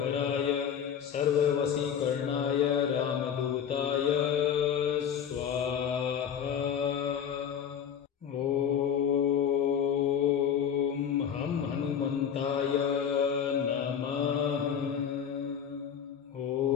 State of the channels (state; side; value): quieter; right; 8.3 dB